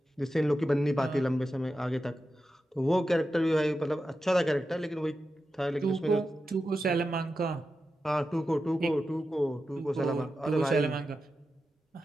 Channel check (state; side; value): normal; both; correlation 0.91